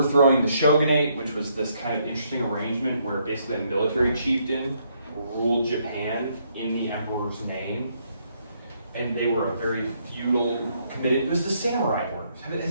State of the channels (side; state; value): both; inverted; correlation -0.72